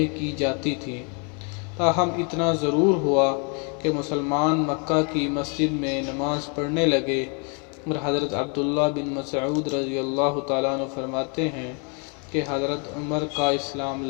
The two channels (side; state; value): right; quieter; 36.2 dB